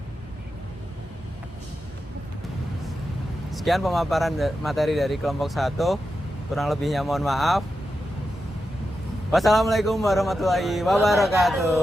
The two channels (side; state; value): both; normal; correlation 0.89